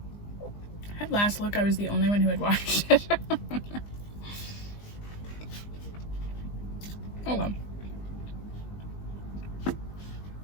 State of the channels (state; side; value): late; right; 20 ms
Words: At last look, I was the only one who had watched it. Oh well.